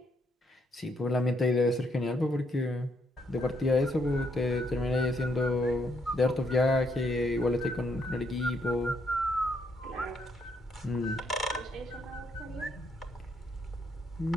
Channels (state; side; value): normal; both; correlation 0.73